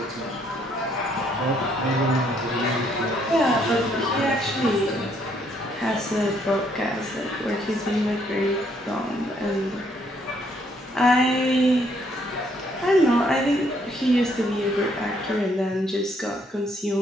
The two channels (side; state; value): both; normal; correlation 0.69